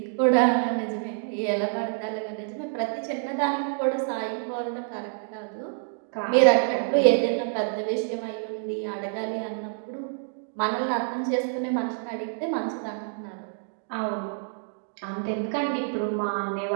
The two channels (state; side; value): silent; left; digital silence